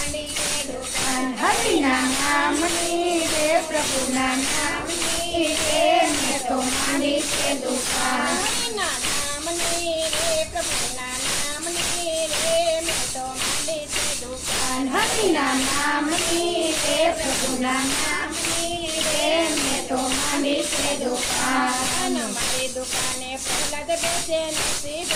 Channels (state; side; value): identical; both; correlation 1.00